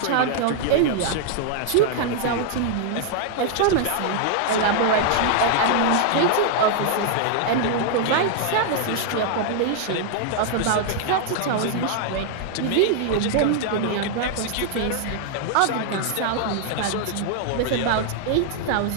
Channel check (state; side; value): different; both; correlation 0.00